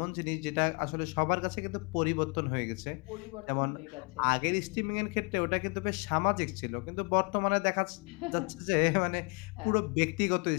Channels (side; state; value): right; quieter; 33.0 dB